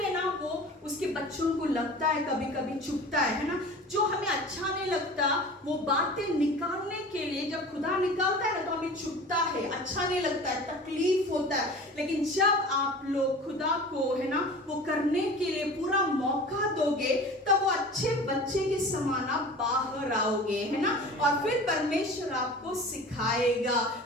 ना वो उसके बच्चों को लगता है, कभी कभी चुभता है ना। जो हमें अच्छा नहीं लगता वो बातें निकालने के लिए जब खुदा निकालता है ना तो हमें चुभता है, अच्छा नहीं लगता है, तकलीफ होता है। लेकिन जब आप लोग खुदा को, है ना, वो करने के लिए पूरा मौका दोगे तब वो अच्छे बच्चे के समान आप बाहर आओगे, है ना। और फिर परमेश्वर आपको सिखाएगा,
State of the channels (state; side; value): normal; both; correlation 0.39